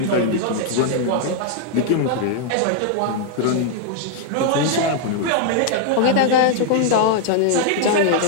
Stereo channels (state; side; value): different; both; correlation -0.01